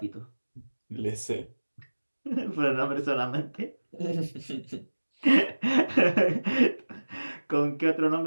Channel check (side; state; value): both; inverted; correlation -1.00